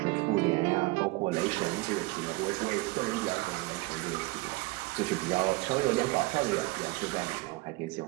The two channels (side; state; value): left; quieter; 22.7 dB